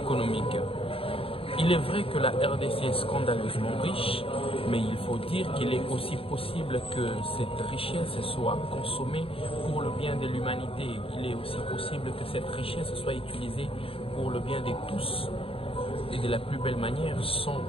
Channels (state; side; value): late; right; 0.27 ms